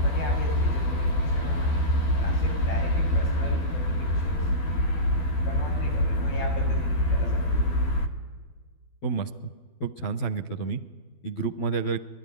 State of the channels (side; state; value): right; late; 12 ms